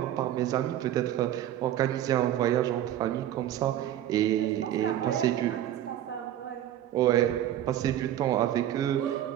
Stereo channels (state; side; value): quieter; left; 12.0 dB